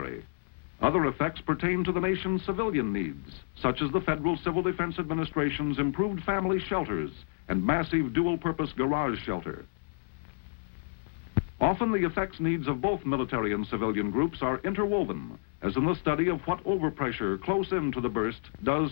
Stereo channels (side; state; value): right; silent; 58 dB below the other